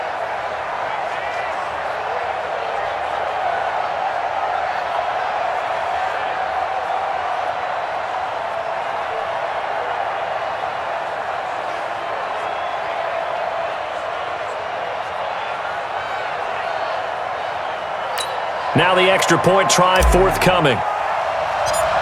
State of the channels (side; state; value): both; identical; correlation 1.00